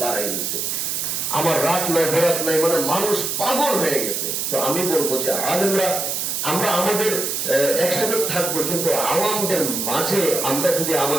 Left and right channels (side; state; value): right; noise; hiss, 1 dB below the sound